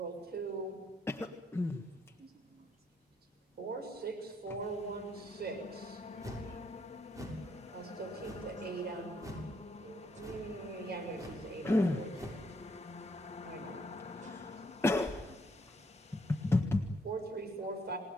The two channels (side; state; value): both; normal; correlation 0.72